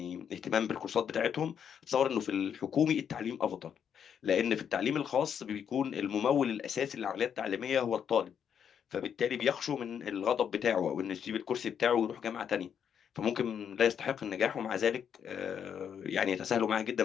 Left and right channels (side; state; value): right; quieter; 8.1 dB